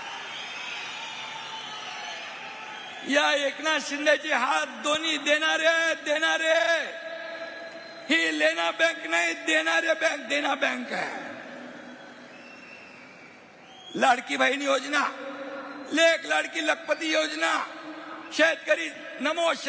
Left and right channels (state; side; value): identical; both; correlation 1.00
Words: या एकनाथ शिंदेचे हात दोन्ही देणारे। ही लेना बैंक नहीं, देणारे बैंक, देना बैंक है। लाडकी बहीण योजना, लेक लाडकी लखपती योजना, शेतकरी नमो